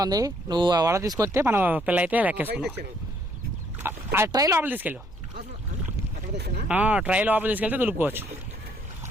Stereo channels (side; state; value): both; normal; correlation 0.67